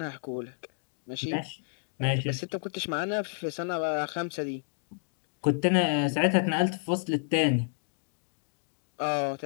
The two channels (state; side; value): silent; right; digital silence